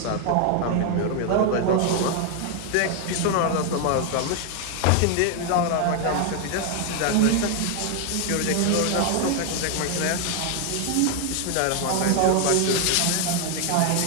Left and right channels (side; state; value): both; different; correlation 0.00